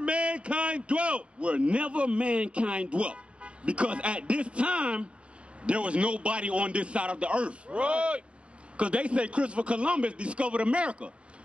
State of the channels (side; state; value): left; late; 0.059 ms